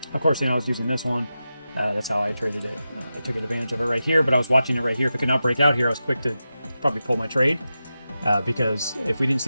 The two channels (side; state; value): both; inverted; correlation -0.92